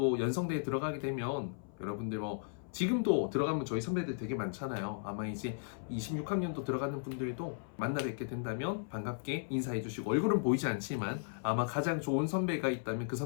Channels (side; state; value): right; silent; 54 dB below the other